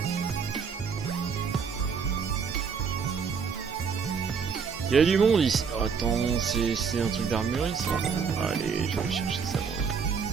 Il y a du monde ici. Oh, attends, c'est un truc d'armurerie ça. Allez, je vais chercher ça moi.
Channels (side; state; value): left; quieter; 6.0 dB